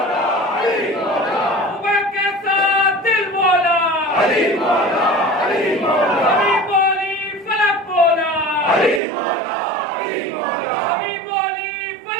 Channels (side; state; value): left; drops out; at 9.0 s